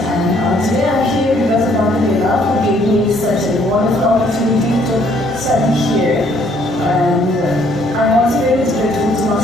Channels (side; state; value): both; normal; correlation 0.64